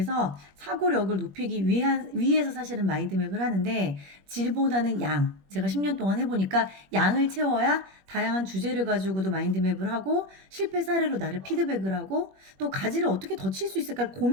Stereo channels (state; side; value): late; left; 21 ms